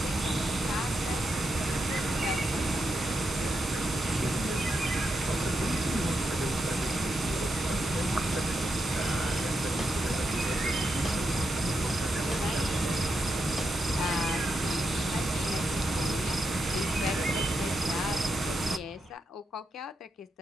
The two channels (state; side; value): normal; both; correlation 0.85